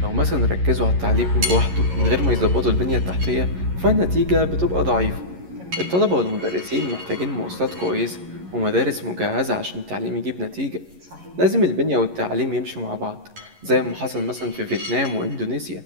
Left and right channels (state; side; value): late; left; 11 ms